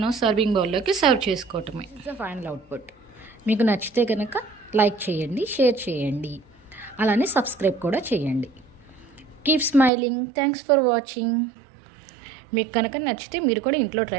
సర్వింగ్ బౌల్లోకి సర్వ్ చేసుకోవటమే. Final output. మీకు నచ్చితే కనుక లైక్ చేయండి, షేర్ చేయండి, అలానే సబ్స్క్రైబ్ కూడా చేయండి. Keep smiling. Thanks for watching. మీకు కనుక నచ్చితే మీరు కూడా ఇంట్లో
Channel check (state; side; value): drops out; left; at 9.9 s